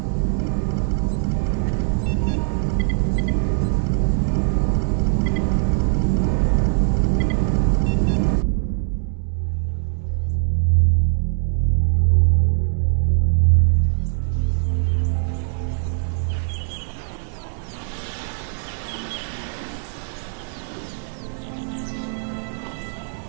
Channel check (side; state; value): left; silent; digital silence